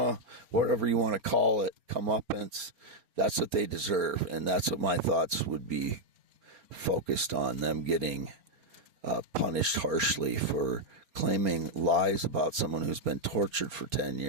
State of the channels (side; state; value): left; late; 4.3 ms